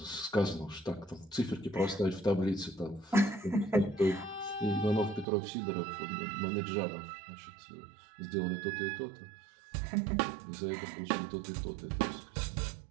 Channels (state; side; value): drops out; left; at 5.2 s